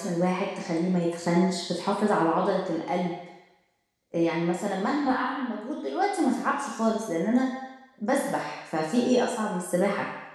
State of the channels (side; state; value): both; identical; correlation 1.00